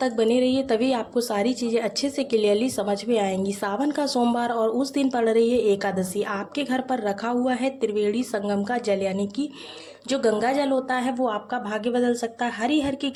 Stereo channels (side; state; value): both; identical; correlation 1.00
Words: बने रहिए, तभी आपको सारी चीज़ें अच्छे से क्लियरली समझ में आएंगी। सावन का सोमवार और उस दिन पड़ रही है एकादशी। आपके घर पर रखा हुआ है त्रिवेणी संगम का जल, यानी कि जो गंगा जल होता है वो आपका भाग्य बदल सकता है। हरि हर की